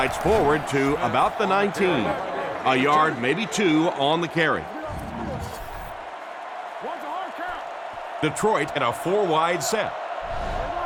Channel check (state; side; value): identical; both; correlation 1.00